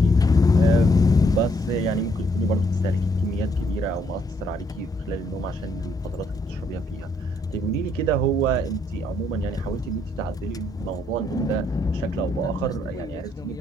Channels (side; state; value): both; normal; correlation 0.71